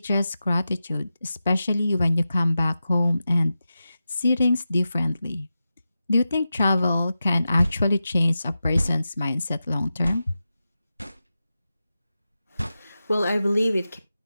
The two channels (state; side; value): inverted; both; correlation -0.92